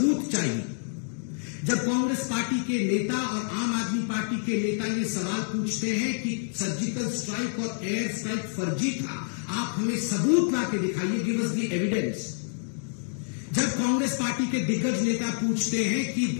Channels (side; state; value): right; silent; digital silence